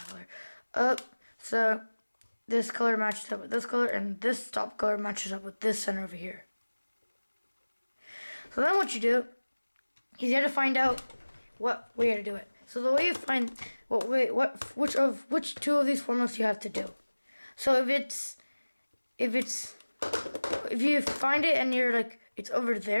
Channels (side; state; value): both; inverted; correlation -1.00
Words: color. So this color matches up with this color, and this top color matches up with this center over here. So then what you do is you have to find out what way to do it. So the way you find which two of these formulas you have to do. So if you find it and you're like it's over